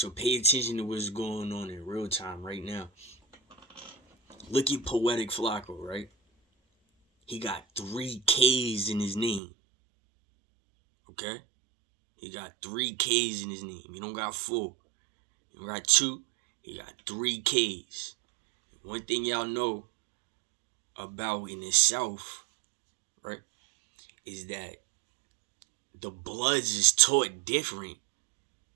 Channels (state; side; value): drops out; left; at 9.4 s